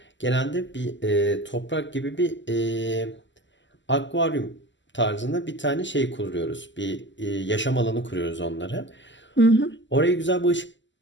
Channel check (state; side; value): late; right; 0.54 ms